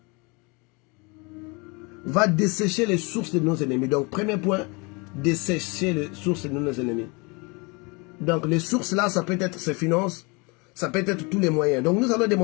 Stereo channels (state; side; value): quieter; right; 29.0 dB